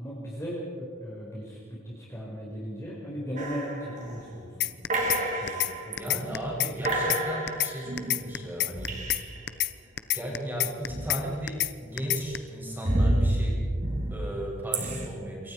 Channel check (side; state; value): both; normal; correlation 0.50